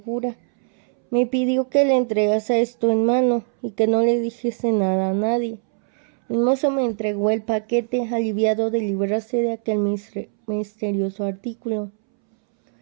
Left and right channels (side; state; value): left; silent; 65 dB below the other